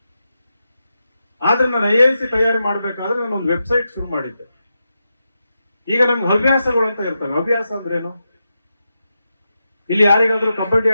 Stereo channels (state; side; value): inverted; both; correlation -0.88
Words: ಆದ್ರೆ ನಾನು IAS ತಯಾರಿ ಮಾಡ್ಬೇಕಾದ್ರೆ ನಾನು ಒಂದು ವೆಬ್ಸೈಟ್ ಶುರು ಮಾಡಿದ್ದೆ. ಈಗ ನಮ್ಗೆ ಹವ್ಯಾಸಗಳು ಅಂತ ಇರ್ತವೆ. ಹವ್ಯಾಸ ಅಂದ್ರೇನು? ಇಲ್ಲಿ ಯಾರಿಗಾದ್ರೂ ಕಬಡ್ಡಿ